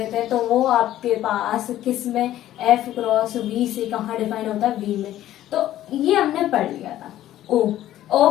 हैं, तो वो आपके पास किस में एफ क्रॉस वी से कहाँ डिफाइन होता है, वी में। तो ये हमने पढ़ लिया था। ओ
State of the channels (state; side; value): quieter; right; 13.2 dB